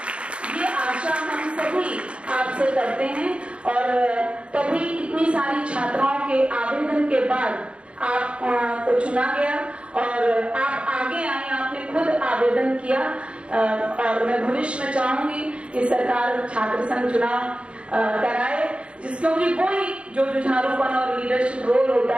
ये आशा हम सभी आपसे करते हैं और तभी इतनी सारी छात्राओं के आवेदन के बाद आपको चुना गया और आप आगे आए, आपने खुद आवेदन किया और मैं भविष्य में चाहूंगी कि सरकार छात्र संघ चुनाव कराए, क्योंकि वही जो जुझारूपन और लीडरशिप रोल होता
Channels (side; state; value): left; late; 0.059 ms